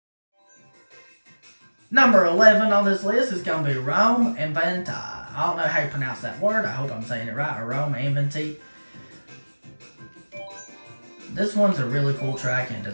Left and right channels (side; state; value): both; inverted; correlation -1.00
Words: Number 11 on this list is going to be Rome Inventi. I don't know how you pronounce that word. I hope I'm saying it right. Rome Inventi. This one's a really cool track and